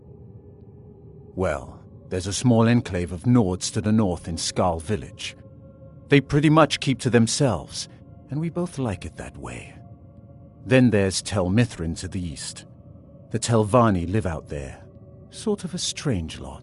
Well, there's a small enclave of Nords to the north in Skarl village. They pretty much keep to themselves, and we both like it that way. Then there's Tel Mithrin to the east. The Telvanni live out there. Sort of a strange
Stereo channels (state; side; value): identical; both; correlation 1.00